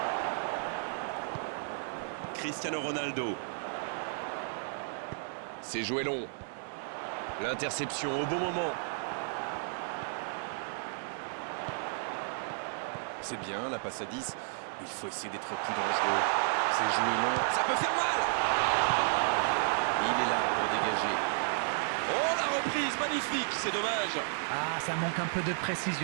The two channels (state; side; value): silent; left; 56 dB below the other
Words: Cristiano Ronaldo. C'est joué long. L'interception au bon moment. C'est bien, la passe à 10. Il faut essayer d'être plus dangereux. C'est joué long. Ça peut faire mal. Il est là pour dégager. Oh, la reprise, magnifique, c'est dommage. Ah, ça manque un peu de